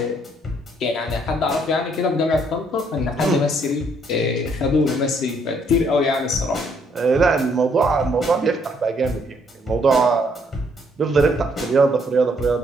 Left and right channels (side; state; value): both; normal; correlation 0.68